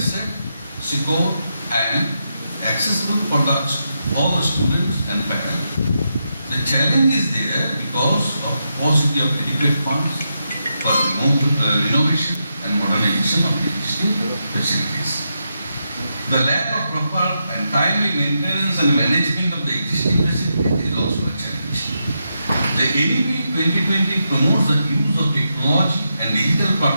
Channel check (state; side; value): inverted; both; correlation -0.85